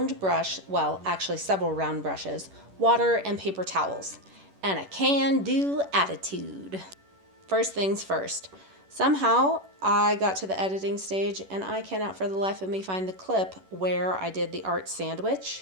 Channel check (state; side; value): late; left; 11 ms